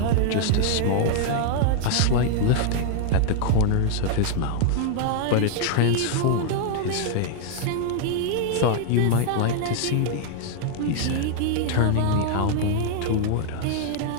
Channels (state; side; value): different; both; correlation 0.00